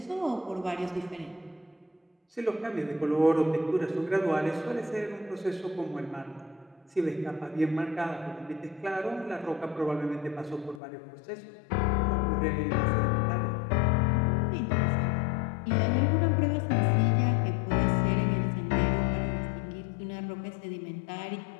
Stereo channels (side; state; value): right; drops out; at 10.8 s